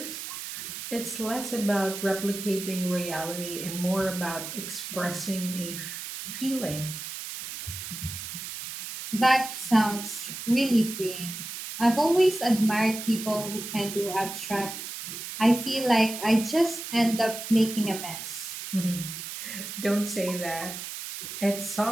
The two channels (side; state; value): right; noise; hiss, 8 dB below the sound